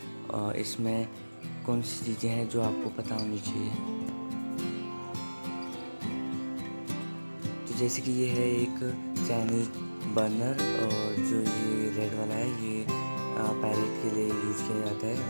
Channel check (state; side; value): inverted; both; correlation -1.00